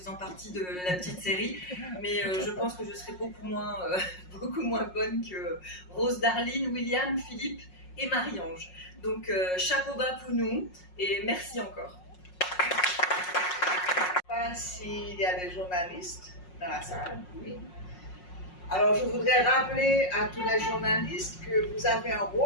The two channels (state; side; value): late; right; 5.5 ms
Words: partie de la petite série, mais je pense que je serai beaucoup moins bonne que Rose Darline, William, Philippe et Marie-Ange. Donc chapeau bas pour nous et merci encore. Je ne sais pas s'il y a des journalistes dans la salle. Oui. Alors je voudrais rappeler à tous les journalistes que vous avez un